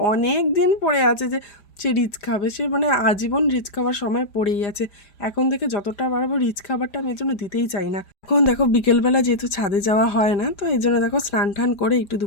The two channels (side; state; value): right; late; 5.0 ms